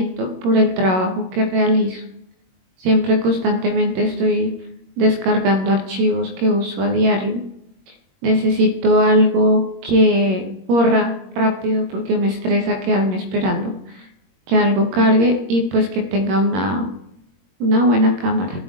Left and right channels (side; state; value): left; late; 21 ms